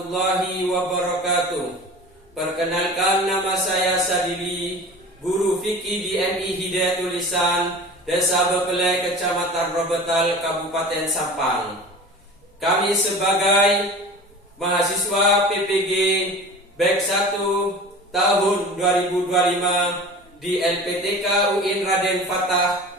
wabarakatuh. Perkenalkan, nama saya Sadili, guru fikih di MI Hidayatul Lisan, Desa Bepelai, Kecamatan Robetal, Kabupaten Sampang. Kami sebagai mahasiswa PPG BEK 1 tahun 2025 di LPTK UIN Raden Fatah,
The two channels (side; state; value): both; normal; correlation 0.37